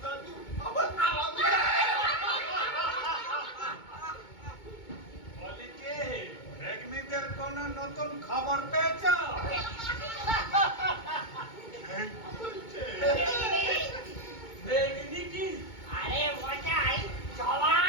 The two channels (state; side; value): late; right; 2.2 ms